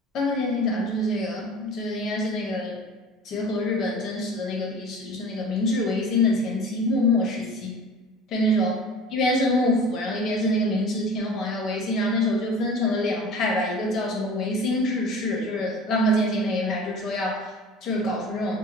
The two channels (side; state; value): both; normal; correlation 0.41